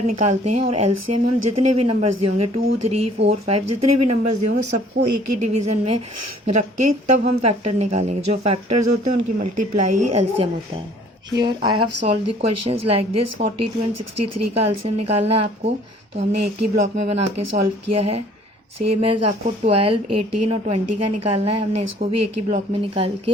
निकालते हैं, और एलसीएम हम जितने भी नंबर्स दिए होंगे 2 3 4 5 जितने भी नंबर्स दिए होंगे सबको एक ही डिवीज़न में रख के तब हम फैक्टर निकालेंगे. जो फैक्टर्स होते हैं उनकी मल्टीप्लाई ही एलसीएम होता है. Here I have solve the questions like this. 42 and 63 का एलसीएम निकालना है आपको, तो हमने एक ही ब्लॉक में बना के सॉल्व किया है. सेम एज आपको 12 18 और 20 का निकालना है, हमने इसको भी एक ही ब्लॉक में निकाल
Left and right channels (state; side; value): normal; both; correlation 0.55